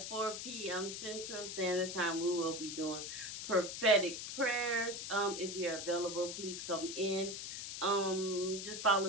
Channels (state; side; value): noise; left; hiss, 6 dB below the sound